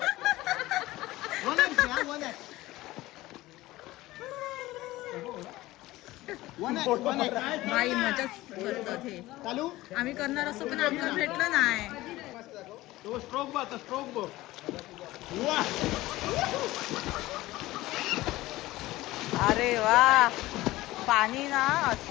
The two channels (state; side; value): quieter; right; 17.8 dB